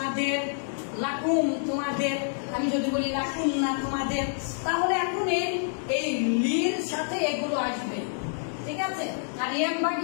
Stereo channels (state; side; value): silent; right; digital silence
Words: লাকুম তোমাদের, আমি যদি বলি লাকুম না তোমাদের, তাহলে এখন এই লির সাথে এগুলো আসবে, ঠিক আছে। আর